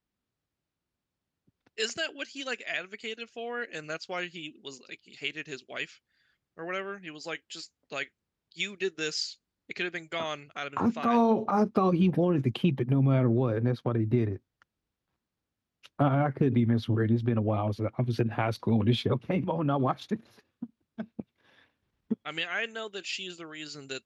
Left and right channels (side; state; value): both; identical; correlation 1.00